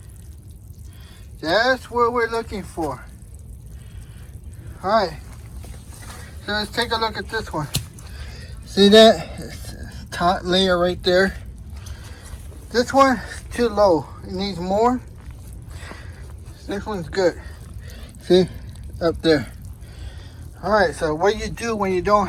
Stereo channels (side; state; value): both; identical; correlation 1.00